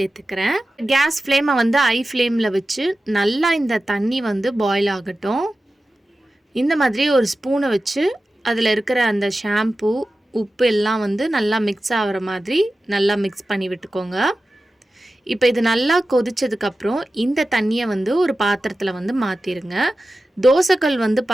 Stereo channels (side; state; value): both; normal; correlation 0.94